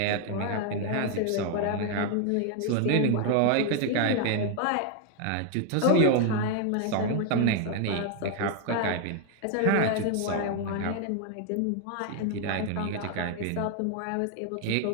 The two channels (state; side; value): different; both; correlation 0.00